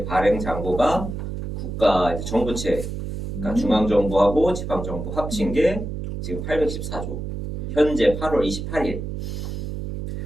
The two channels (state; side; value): noise; right; hum, 6 dB below the sound